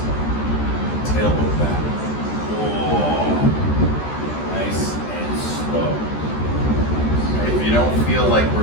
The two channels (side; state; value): right; late; 14 ms